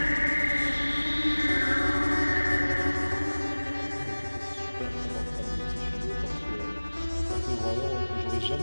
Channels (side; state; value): both; inverted; correlation -1.00